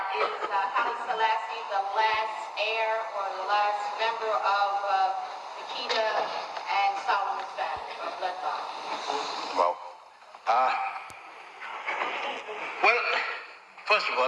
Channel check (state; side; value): identical; both; correlation 1.00